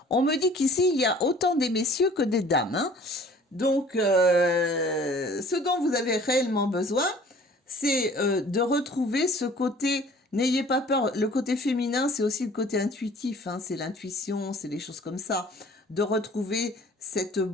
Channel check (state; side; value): normal; both; correlation 0.51